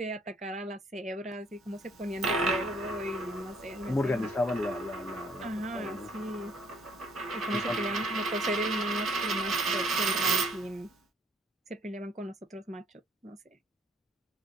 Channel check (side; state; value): both; normal; correlation 0.63